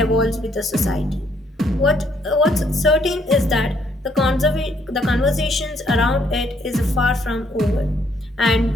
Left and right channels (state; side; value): normal; both; correlation 0.69